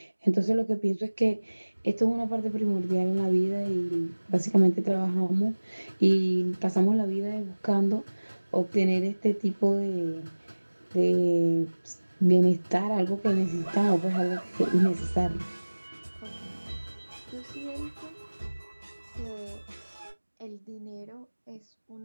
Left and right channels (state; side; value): inverted; both; correlation -1.00